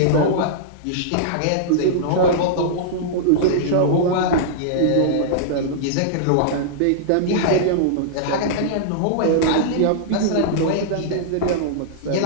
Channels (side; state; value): both; different; correlation -0.02